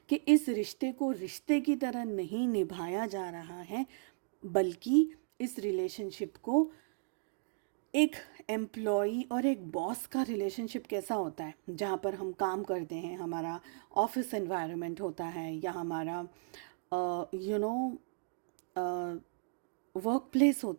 कि इस रिश्ते को रिश्ते की तरह नहीं निभाया जा रहा है, बल्कि इस रिलेशनशिप को एक एम्प्लॉई और एक बॉस का रिलेशनशिप कैसा होता है, जहाँ पर हम काम करते हैं, हमारा ऑफिस एनवायरनमेंट होता है, या हमारा वर्क प्लेस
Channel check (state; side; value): silent; left; digital silence